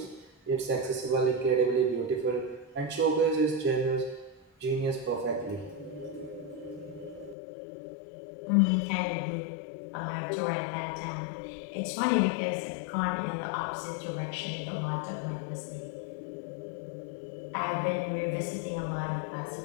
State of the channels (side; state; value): right; drops out; at 7.4 s